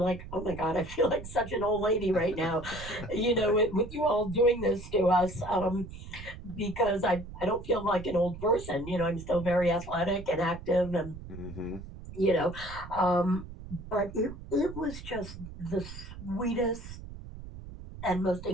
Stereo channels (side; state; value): right; noise; rumble, 13 dB below the sound